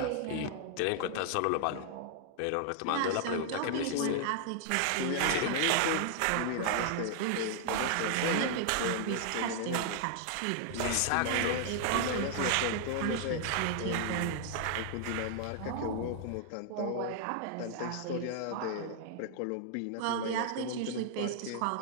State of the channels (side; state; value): both; different; correlation 0.00